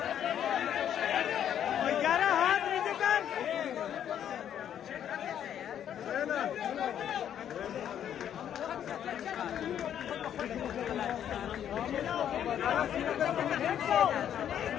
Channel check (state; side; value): quieter; right; 9.8 dB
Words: यार हाथ नीचे कर।